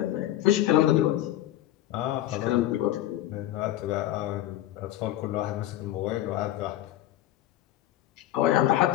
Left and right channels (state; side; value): quieter; right; 13.9 dB